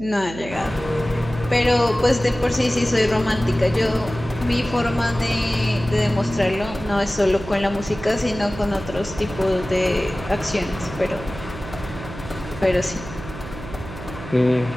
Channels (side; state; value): right; noise; hum, 12 dB below the sound